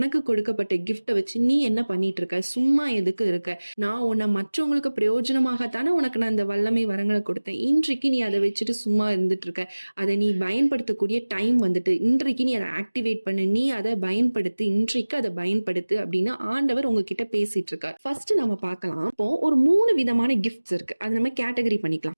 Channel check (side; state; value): both; inverted; correlation -1.00